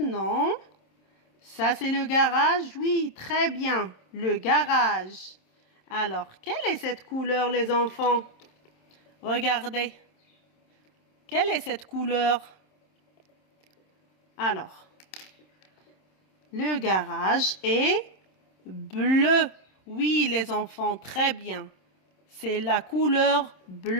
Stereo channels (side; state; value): right; late; 27 ms